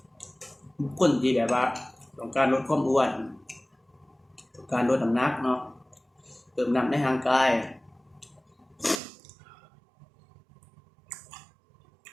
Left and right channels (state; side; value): drops out; left; at 9.0 s